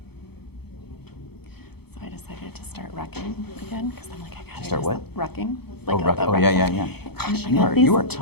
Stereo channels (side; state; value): right; late; 0.97 ms